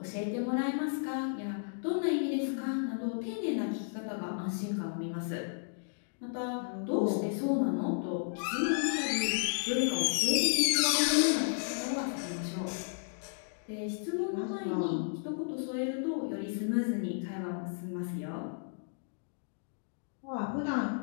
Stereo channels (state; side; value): silent; right; digital silence